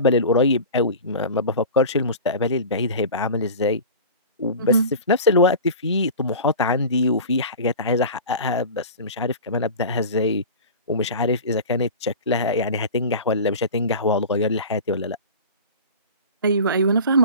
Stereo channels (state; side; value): inverted; both; correlation -0.33